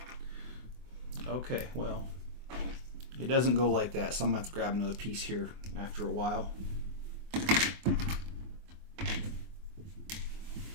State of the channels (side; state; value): left; late; 24 ms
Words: Okay, well, it doesn't go like that, so I'm going to have to grab another piece here after a while.